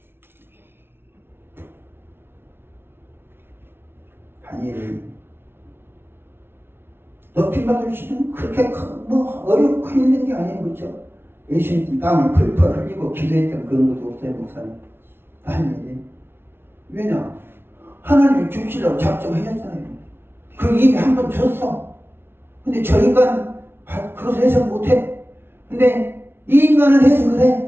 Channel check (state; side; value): late; left; 0.11 ms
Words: 다니엘이 높임받을 수는 그렇게 어렵고 힘든 게 아니에요. 그렇죠? 예수님 땀을 펄펄 흘리고 기도했던 그런 것도 없어요. 목사님. 다니엘이. 왜냐? 하나님이 죽시라고 작정하셨잖아요. 그 이미 한 번 줬어. 근데 저 인간 그것을 해석 못해. 근데 이 인간은 해석을